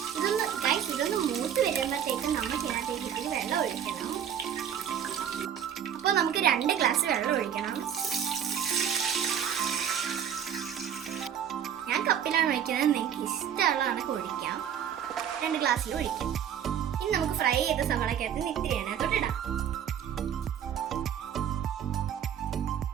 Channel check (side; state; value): left; quieter; 9.0 dB